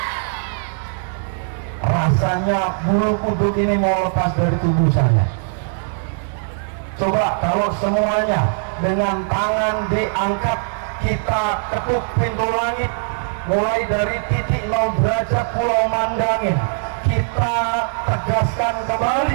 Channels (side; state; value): left; silent; 66 dB below the other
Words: Rasanya bulu kuduk ini mau lepas dari tubuh saya. Coba kalau semuanya dengan tangan diangkat, kita ketuk pintu langit mulai dari titik 0 derajat Pulau Mandangin. Kita tegaskan